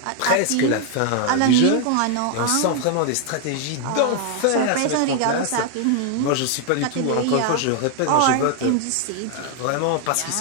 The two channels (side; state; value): both; different; correlation 0.00